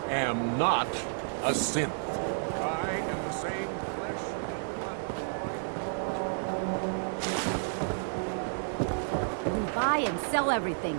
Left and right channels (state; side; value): silent; left; 57 dB below the other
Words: am not a synth. I am the same flesh and blood. We buy and sell